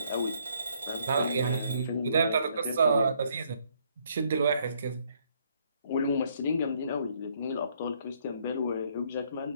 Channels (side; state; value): both; inverted; correlation -0.68